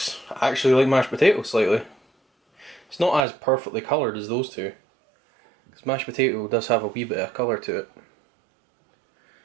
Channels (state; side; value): drops out; left; at 3.2 s